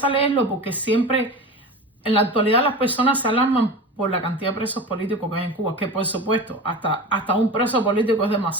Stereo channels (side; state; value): both; normal; correlation 0.30